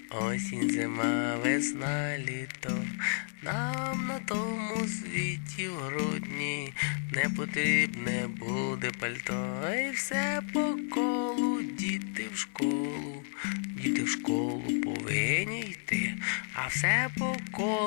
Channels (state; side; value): silent; right; 57 dB below the other